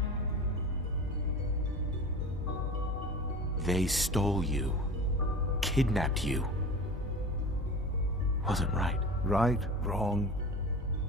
They stole you, kidnapped you. Wasn't right. Right, wrong,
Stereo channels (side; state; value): both; normal; correlation 0.34